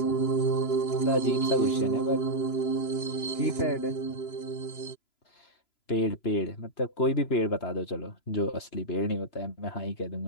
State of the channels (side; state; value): right; late; 3.0 ms